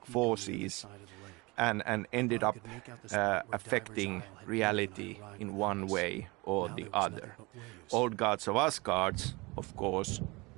forces and ended up affecting reality in one way or the other. Old gods of Asgard, of course,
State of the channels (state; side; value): quieter; left; 24.9 dB